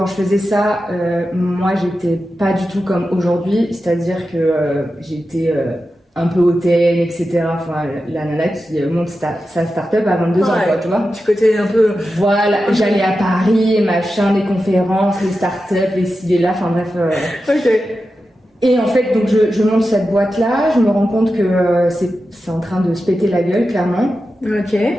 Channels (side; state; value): both; normal; correlation 0.91